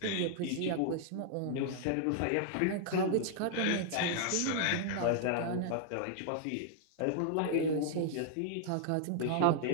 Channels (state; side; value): different; both; correlation -0.01